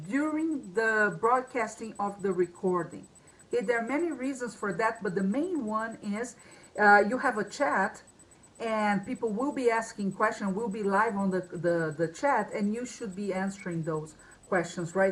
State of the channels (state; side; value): identical; both; correlation 1.00